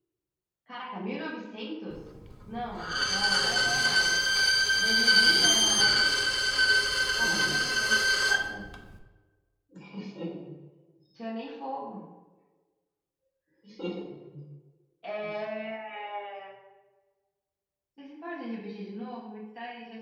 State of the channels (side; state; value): both; identical; correlation 1.00